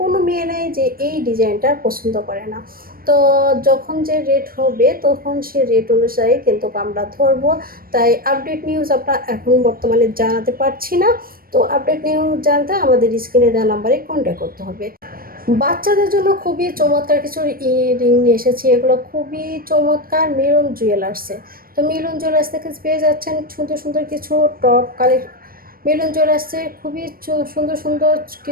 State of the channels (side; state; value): left; late; 0.43 ms